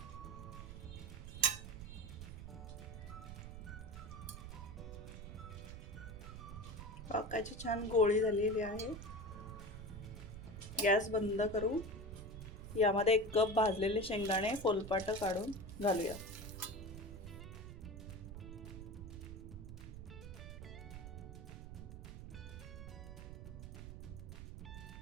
पाकाची छान गोळी झालेली आहे। गॅस बंद करू। यामध्ये 1 कप भाजलेले शेंगदाणे फोलपाट काढून घालूया।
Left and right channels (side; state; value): right; noise; rumble, 10 dB below the sound